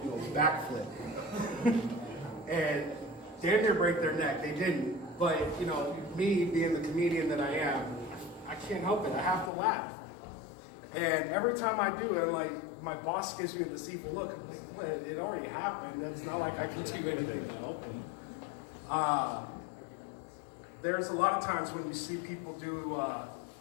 a backflip. And damn near break their neck. They didn't. But, me being the comedian that I am, I can't help it. I have to laugh. And every time I do it, like, my boss gives me this evil look. I'm like, what? It already happened. It's not like I can do anything to help them. There's a lot of times when you see people do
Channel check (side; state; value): right; drops out; at 9.5 s